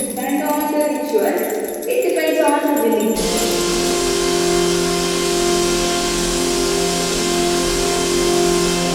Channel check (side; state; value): both; identical; correlation 1.00